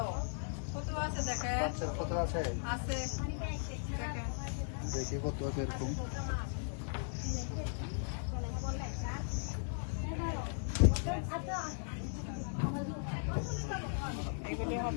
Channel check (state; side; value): silent; right; 53 dB below the other